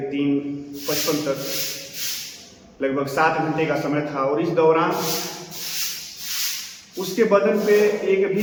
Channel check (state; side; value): identical; both; correlation 1.00